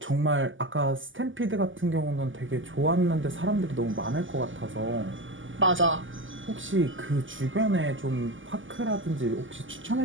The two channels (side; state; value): left; late; 0.57 ms